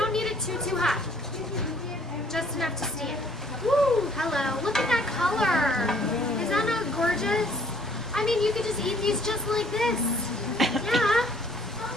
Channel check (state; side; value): normal; both; correlation 0.60